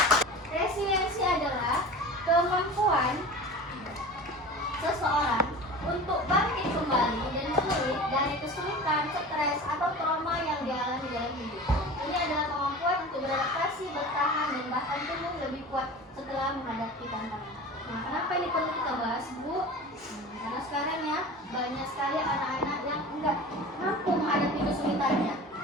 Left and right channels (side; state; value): both; normal; correlation 0.36